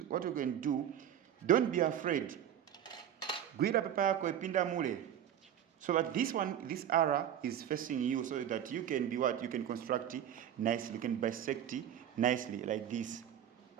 what you can do, don't be afraid. Gwira paper yako ipinda mule. So that this one, this arrow is facing you, so that you can be what? You can construct it nicely. You can bisect it nicely like this.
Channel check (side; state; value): left; quieter; 10.1 dB